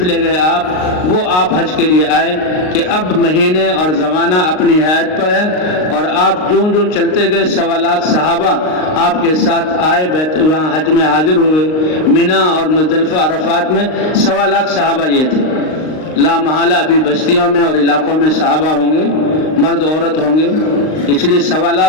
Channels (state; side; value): late; right; 39 ms